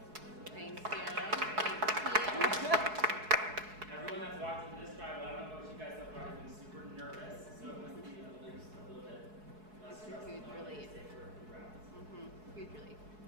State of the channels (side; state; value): left; late; 4.7 ms